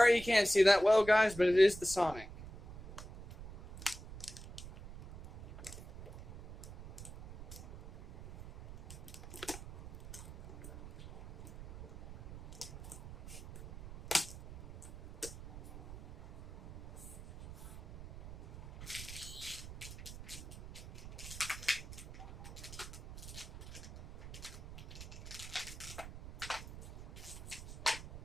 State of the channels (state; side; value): noise; right; rumble, 14 dB below the sound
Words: you can't see that well, guys, but it is the Sonic.